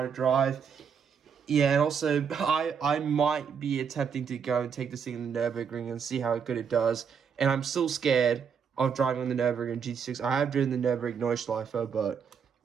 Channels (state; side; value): quieter; left; 6.8 dB